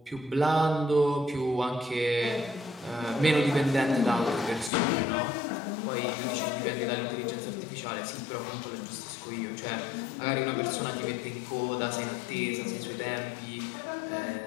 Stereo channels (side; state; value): right; drops out; at 4.7 s